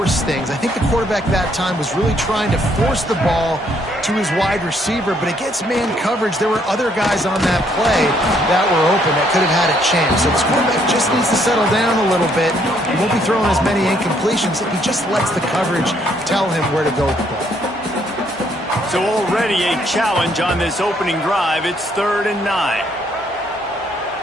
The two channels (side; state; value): both; normal; correlation 0.69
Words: things. I think the quarterback that time was really trying to force the ball to his wide receiver, but against man coverage, there were other guys on that play that were open that could have had a chance. So this quarterback just needs to settle down a little bit. He won't be throwing as many incompletions if he just lets the coverage tell him where to go with the ball. So already a challenge on this opening drive. It's 3rd and 9.